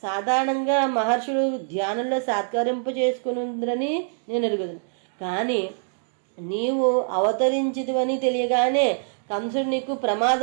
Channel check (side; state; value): left; silent; digital silence